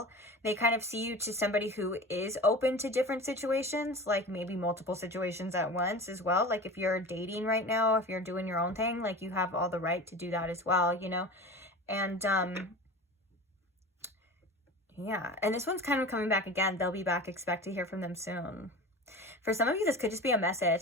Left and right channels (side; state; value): both; normal; correlation 0.34